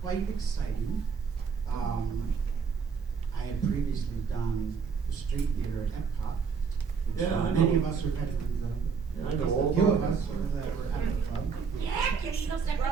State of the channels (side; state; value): left; quieter; 5.8 dB